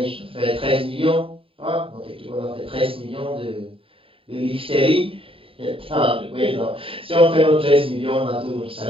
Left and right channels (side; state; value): left; late; 0.27 ms